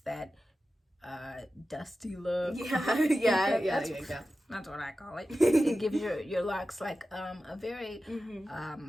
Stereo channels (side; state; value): both; normal; correlation 0.93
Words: that dusty look. That's what I call it. It gives your locks a very